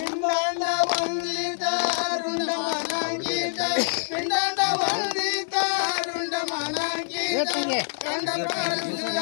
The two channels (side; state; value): right; silent; digital silence